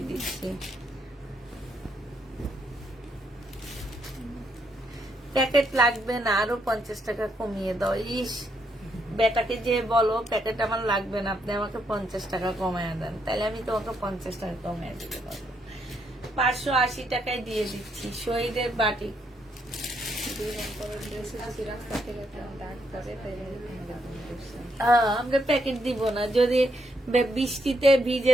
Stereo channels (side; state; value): both; normal; correlation 0.76